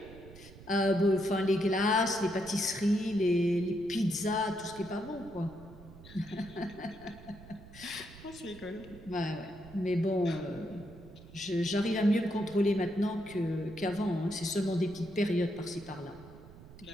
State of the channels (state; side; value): noise; right; rumble, 19 dB below the sound